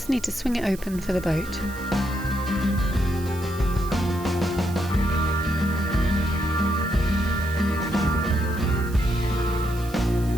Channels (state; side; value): noise; right; hiss, 18 dB below the sound